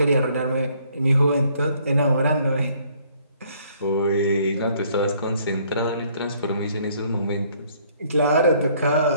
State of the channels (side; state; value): both; inverted; correlation -0.63